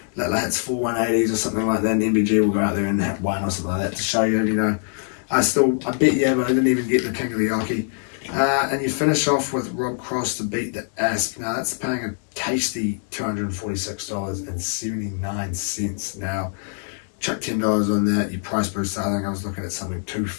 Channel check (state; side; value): silent; right; 59 dB below the other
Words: Littler hits 4 180s or something like that, and MVG will go out there and hit 1 or something like that to show you, you know, I bet you, but I didn't even get the King of the Oki. And you finish off with Rob Cross to beat the Asp. Now that's paying a tasty $246.79. Now, chuck $10 on that, your price booster, I think I was looking at something